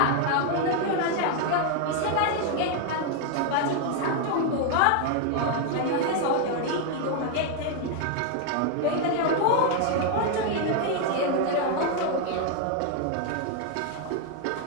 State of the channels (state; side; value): different; both; correlation 0.00